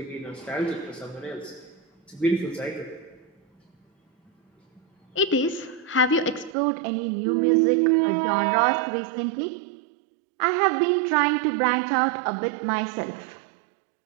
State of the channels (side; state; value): left; drops out; at 6.6 s